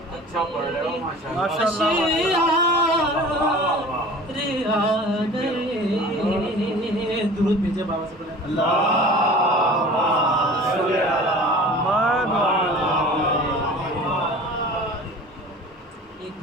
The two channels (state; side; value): normal; both; correlation 0.41